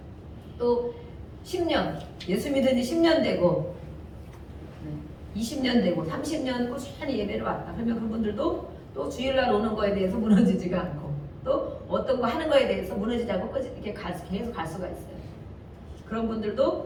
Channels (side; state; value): both; identical; correlation 1.00